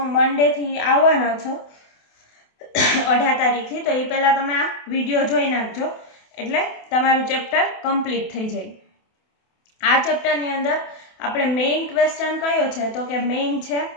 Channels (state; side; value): late; right; 28 ms